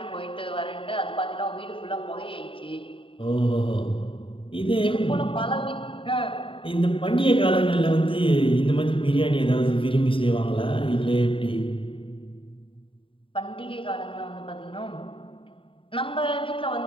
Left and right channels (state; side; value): late; right; 0.25 ms